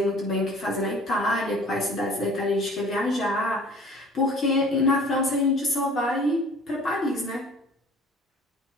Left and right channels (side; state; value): both; normal; correlation 0.48